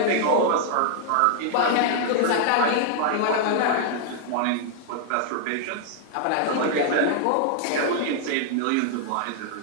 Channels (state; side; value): different; both; correlation -0.01